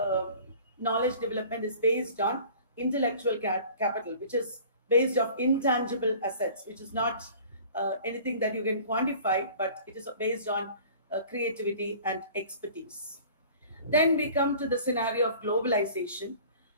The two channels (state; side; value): inverted; both; correlation -0.46